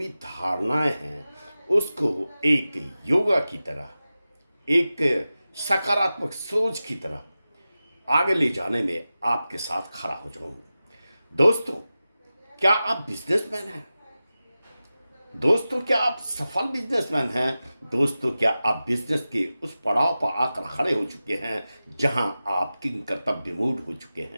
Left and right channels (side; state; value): both; inverted; correlation -0.94